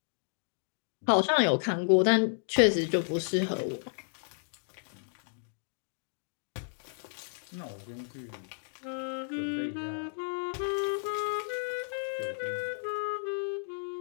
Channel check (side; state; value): right; silent; digital silence